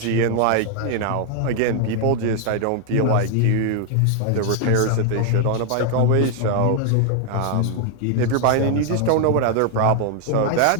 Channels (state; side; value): different; both; correlation 0.00